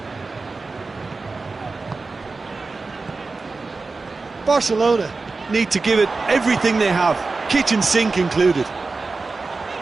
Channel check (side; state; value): left; quieter; 3.9 dB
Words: Barcelona Need to give it everything they have, kitchen sink included.